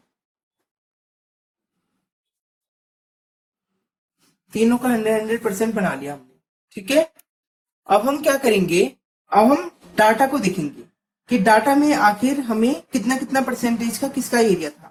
तीनों का 100% बना लिया हमने। ठीक है, अब हम क्या करेंगे, अब हम डाटा को देखेंगे कि डाटा में आखिर हमें कितना कितना परसेंटेज का किसका एरिया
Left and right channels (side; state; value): both; identical; correlation 1.00